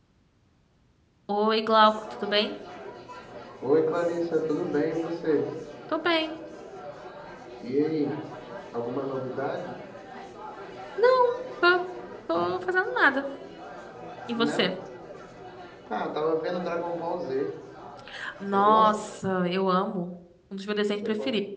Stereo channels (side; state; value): both; identical; correlation 1.00